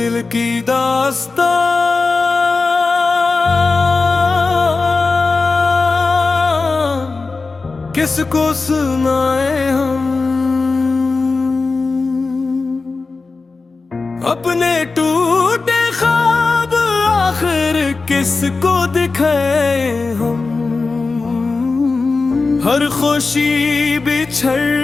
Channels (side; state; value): right; quieter; 4.0 dB